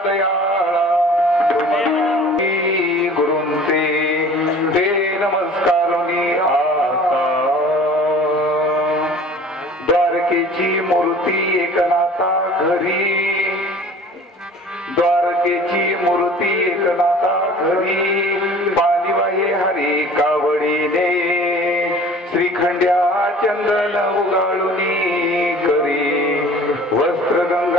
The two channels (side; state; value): both; normal; correlation 0.46